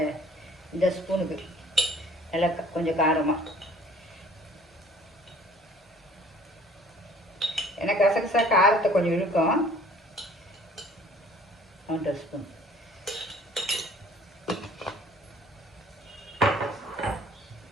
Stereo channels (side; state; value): both; normal; correlation 0.53